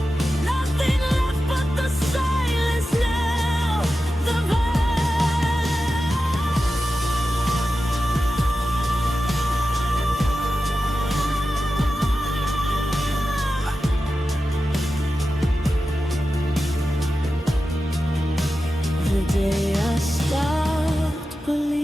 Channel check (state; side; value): normal; both; correlation 0.92